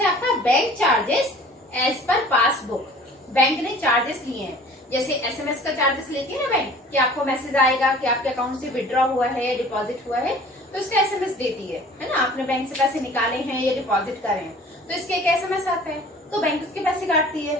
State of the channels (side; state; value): both; normal; correlation 0.47